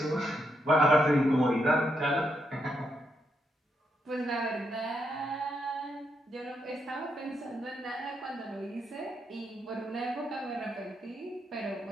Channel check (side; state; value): both; normal; correlation 0.80